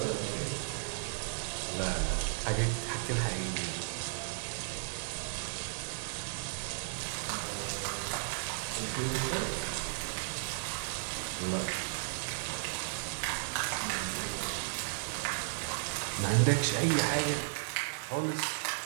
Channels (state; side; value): silent; left; digital silence